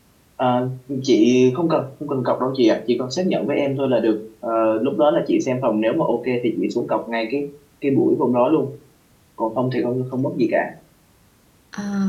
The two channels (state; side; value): identical; both; correlation 1.00